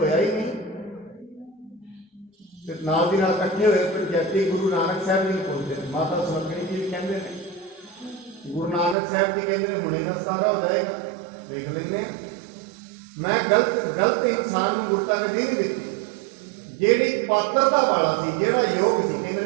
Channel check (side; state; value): left; drops out; at 9.0 s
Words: ਹੀ ਨਹੀਂ। ਤੇ ਨਾਲ ਦੀ ਨਾਲ ਇਕੱਠੇ ਹੋਏ ਪੰਚਾਇਤੀ ਗੁਰੂ ਨਾਨਕ ਸਾਹਿਬ ਜੀ ਨੂੰ ਪੁੱਛਦੇ ਨੇ। ਮਾਤਾ ਸੁਲੱਖਣੀ ਜੀ ਵੀ ਕਹਿੰਦੇ ਨੇ, ਗੁਰੂ ਨਾਨਕ ਸਾਹਿਬ ਜੀ ਕਹਿੰਦੇ ਨੇ ਹੁਣੇ ਨਾ ਸਾਰਾ ਹੋ ਜਾਏਗਾ, ਵੇਖ ਲੈਂਦੇ ਹਾਂ। ਮੈਂ ਗਲਤ ਇਨਸਾਨ ਨੂੰ ਗੁਰਤਾ ਗੱਦੀ ਨਹੀਂ ਦਿੱਤੀ। ਜਿਹੜੀ ਪਾਤਰਤਾ ਵਾਲਾ ਸੀ, ਜਿਹੜਾ ਯੋਗ ਸੀ,